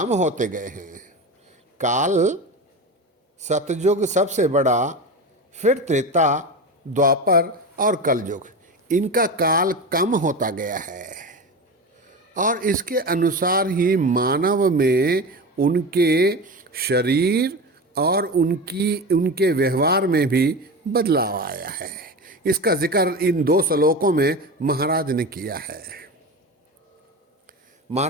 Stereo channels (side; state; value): both; normal; correlation 0.26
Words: होते गए हैं। काल सतयुग सबसे बड़ा, फिर त्रेता, द्वापर और कलयुग। इनका काल कम होता गया है और इसके अनुसार ही मानव में उनके शरीर और उनके व्यवहार में भी बदलाव आया है। इसका जिक्र इन 2 श्लोकों में महाराज ने किया है।